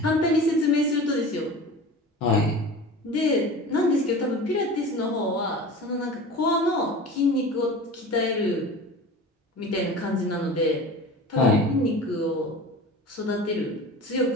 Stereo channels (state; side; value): normal; both; correlation 0.36